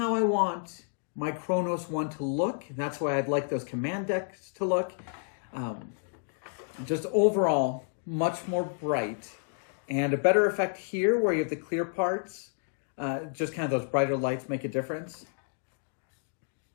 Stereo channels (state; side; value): silent; right; digital silence